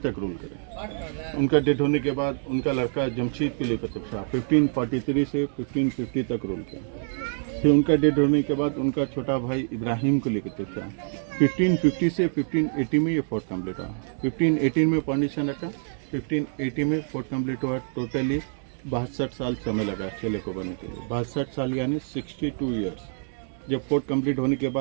रूल करे। उनका डेथ होने के बाद उनका लड़का जमशीद कुली कुतुब शाह 1543 से 1550 तक रूल किया। फिर उनका डेथ होने के बाद उनका छोटा भाई इब्राहिम कुली कुतुब शाह 1550 से 1580 में ये फोर्ट कम्प्लीट हुआ। 1518 में फाउंडेशन रखा, 1580 में फोर्ट कम्प्लीट हुआ। टोटली 62 साल समय लगा किले को बनने के लिए, 62 साल यानी 62 ईयर्स। जब फोर्ट कंप्लीट होने के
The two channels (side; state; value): left; silent; 61 dB below the other